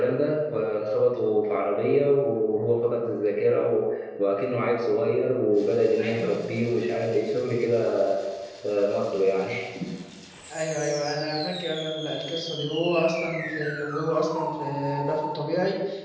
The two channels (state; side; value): identical; both; correlation 1.00